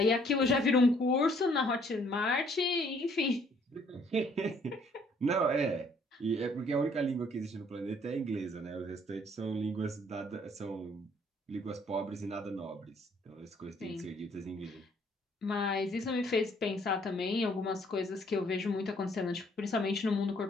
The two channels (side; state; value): both; normal; correlation 0.63